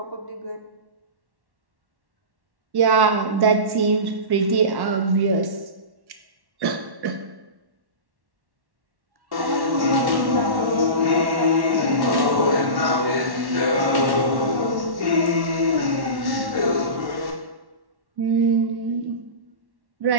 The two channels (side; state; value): left; late; 1.1 ms